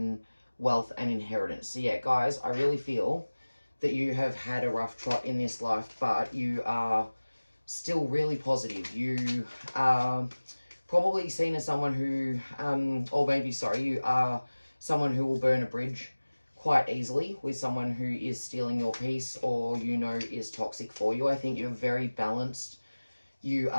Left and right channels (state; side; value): inverted; both; correlation -1.00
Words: wealth, and inheritance. So yeah, guys, I really feel that you have had a rough trot in this life, but you are still really positive. You are probably seen as someone who, or maybe, sorry, you are someone who will burn a bridge quite easily with someone who is stealing your peace or, you know, is toxic for you. I think you're very balanced. You